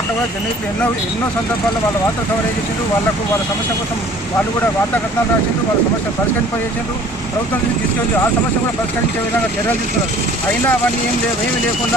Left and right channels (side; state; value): both; normal; correlation 0.51